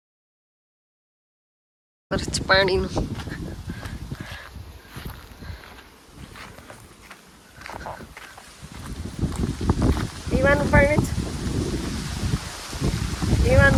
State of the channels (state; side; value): identical; both; correlation 1.00